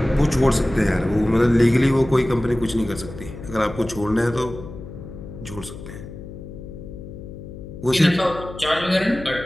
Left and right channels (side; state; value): left; noise; hum, 13 dB below the sound